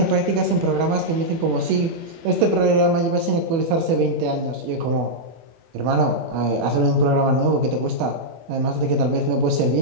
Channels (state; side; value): late; left; 24 ms